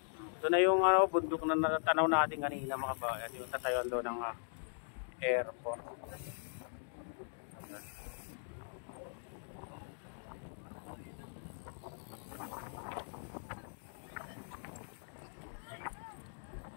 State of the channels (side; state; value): right; silent; digital silence